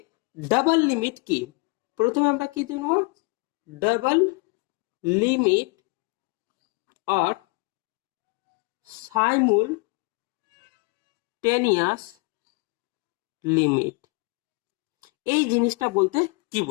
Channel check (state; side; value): quieter; right; 30.5 dB